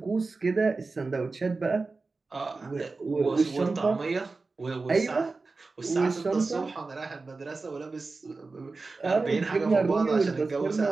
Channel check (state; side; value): quieter; left; 3.8 dB